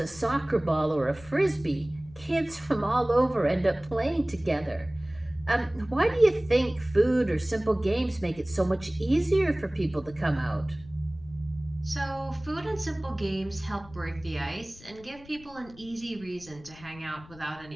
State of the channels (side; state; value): left; noise; rumble, 21 dB below the sound